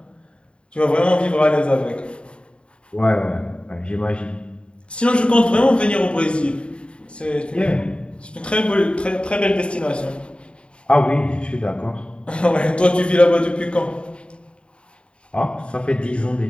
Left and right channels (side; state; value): right; late; 0.055 ms